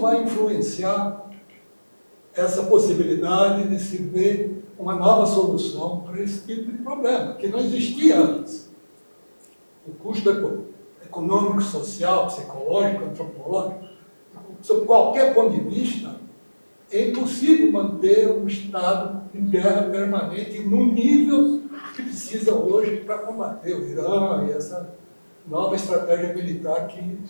influenciar essa possibilidade de se ver uma nova solução para esse tipo de problema, que não existia antes? O custo econômico, social, psicológico, antropológico, sob qualquer ponto de vista, é impossível manter um Estado em guerra permanente no nível que precisa hoje para combater o Irã e essa nova estratégia militar que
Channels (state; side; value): inverted; both; correlation -1.00